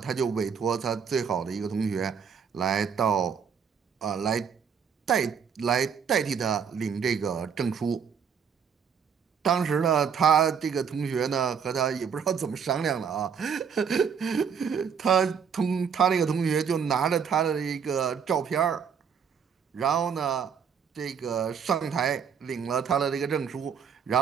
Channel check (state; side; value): quieter; left; 7.0 dB